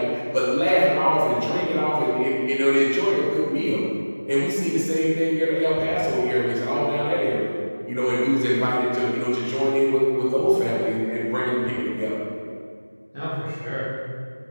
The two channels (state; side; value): inverted; both; correlation -1.00